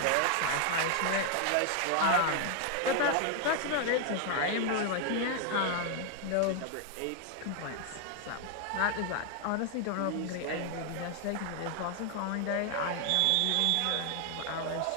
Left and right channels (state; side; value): different; both; correlation 0.00